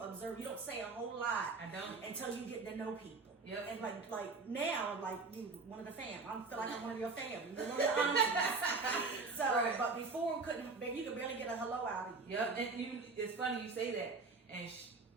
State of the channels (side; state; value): left; quieter; 4.1 dB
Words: observe. You don't say a whole lot. I don't until you get to know people. Yep. And like now, like you one of the fam. I feel like I'm one of your family. You're one of the aunties. So, Right. but before you could barely get a hello out of you. Yep. And it's funny you say that. And